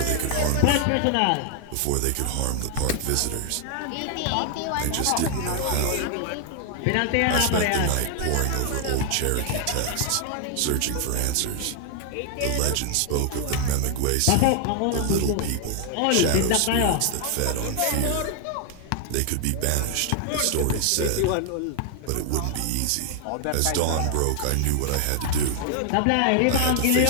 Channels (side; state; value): both; different; correlation 0.00